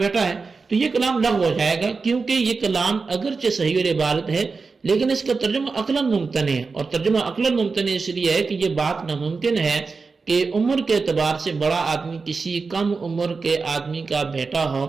بیٹا ہے، تو یہ کلام لغو ہو جائے گا کیونکہ یہ کلام اگرچہ صحیح العبارت ہے لیکن اس کا ترجمہ عقلاً ممتنع ہے، اور ترجمہ عقلاً ممتنع اس لیے ہے کہ یہ بات ناممکن ہے کہ عمر کے اعتبار سے بڑا آدمی کسی کم عمر کے آدمی کا بیٹا ہو۔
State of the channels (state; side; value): quieter; left; 4.5 dB